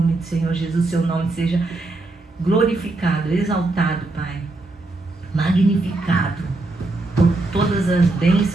do Senhor Jesus, Seu nome seja glorificado, exaltado, Pai, magnificado por todas as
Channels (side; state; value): left; quieter; 3.0 dB